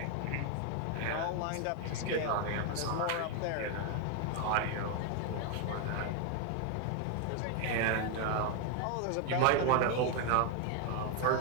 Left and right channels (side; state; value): both; different; correlation 0.01